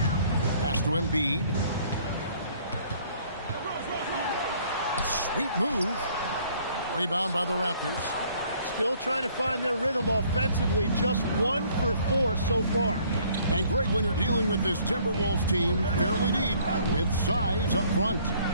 Pass to Embiid. Sweet move. Rebound by the Raptors. Still trying to find their rhythm offensively. Just 1 for 4 so far. And Greg, when you're dealing with this Timberwolves team, fairly deep, with size up front.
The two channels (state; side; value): inverted; both; correlation -0.60